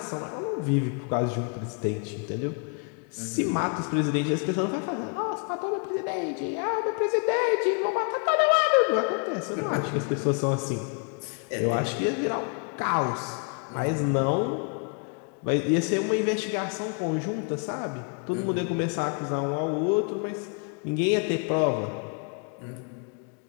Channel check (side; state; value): right; quieter; 39.2 dB